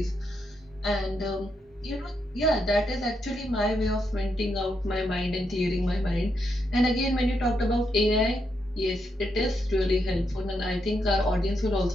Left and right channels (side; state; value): both; normal; correlation 0.81